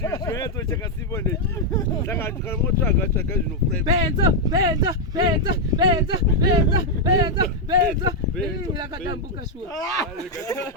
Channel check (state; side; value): normal; both; correlation -0.01